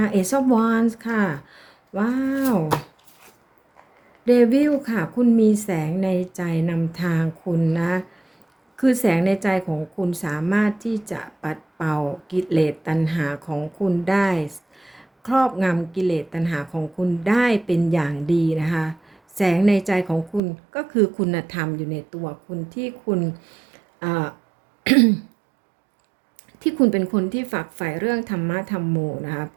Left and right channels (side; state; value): left; drops out; at 20.4 s